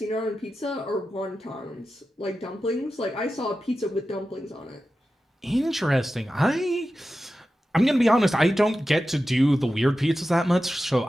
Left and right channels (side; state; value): both; normal; correlation 0.93